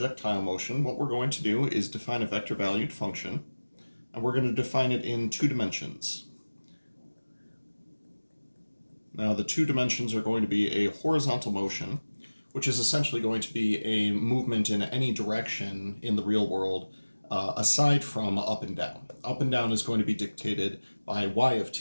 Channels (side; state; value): both; inverted; correlation -1.00